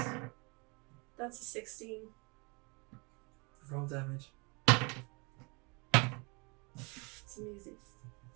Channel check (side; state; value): left; quieter; 29.5 dB